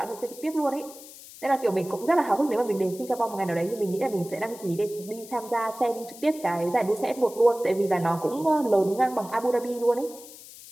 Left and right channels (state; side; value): noise; left; hiss, 17 dB below the sound